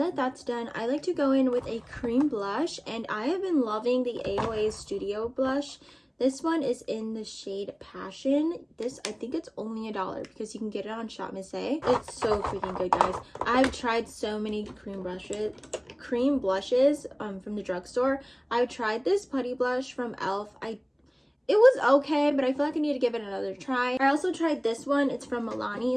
that's done, I like to go in with a cream blush, and I have been loving the AOA Studio blush. This one is in the shade Passion. This, I think it's only $1 because you can get it on Shop Miss A. It's so freaking good, guys. I've tried so many cream blushes from the drugstore. I've tried this putty blush from e.l.f. It was okay, but I feel like I need to give it another try. I also tried this one. It's from Milani.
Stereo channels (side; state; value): both; identical; correlation 1.00